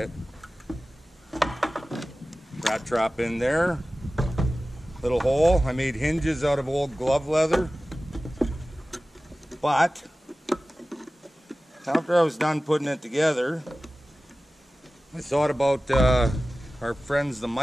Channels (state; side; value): normal; both; correlation 0.96